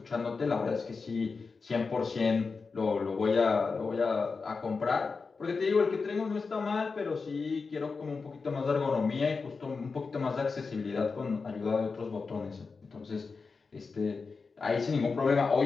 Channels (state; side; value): quieter; right; 4.6 dB